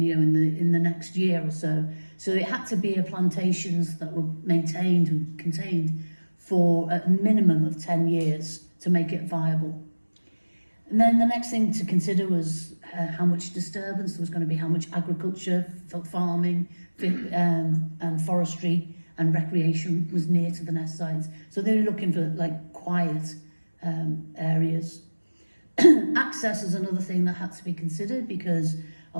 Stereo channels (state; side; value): inverted; both; correlation -1.00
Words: the next year or so. So it had to be plantations that were maintained and contained for a minimum of 10 years to make it viable. And then the next thing to consider was how much disturbance there was going to be, how much agriculture, farming, and forestry and recreation was near to the nest sites. So they were looking for quiet areas. Access is another thing that had to be considered because